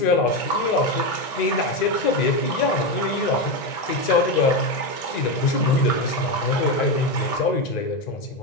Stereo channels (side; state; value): right; late; 1.9 ms